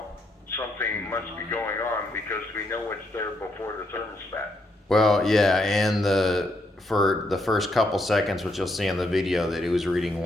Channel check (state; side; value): normal; both; correlation 0.77